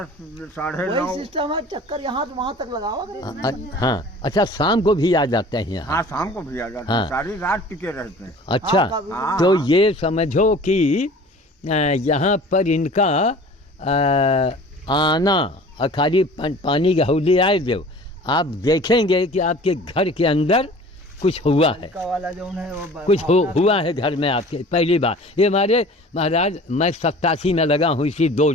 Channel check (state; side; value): normal; both; correlation 0.44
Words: साढ़े 9 सिस्टम है, चक्कर यहाँ से वहाँ तक लगाओ। हाँ, अच्छा शाम को भी आ जाते हैं यहाँ। हाँ, शाम को भी आ जाते हैं। सारी रात टिके रहते हैं। अच्छा, तो ये समझो कि यहाँ पर इनका आना और खाली पानी की हौली आए दो, आप देखेंगे कि आपके घर के अंदर कुछ हुआ है, कुछ हुआ है घर में आपके। पहली बार ये हमारे महाराज, मैं 87 में लगा हूँ, इसी 2